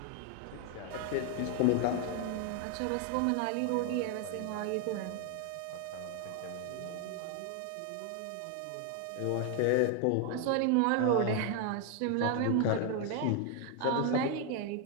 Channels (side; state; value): both; different; correlation 0.01